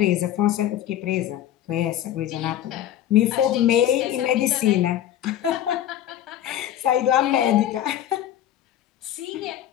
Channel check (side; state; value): right; quieter; 11.6 dB